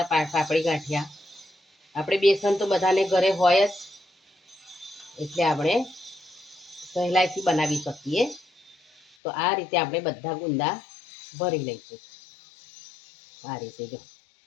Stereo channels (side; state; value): right; drops out; at 9.2 s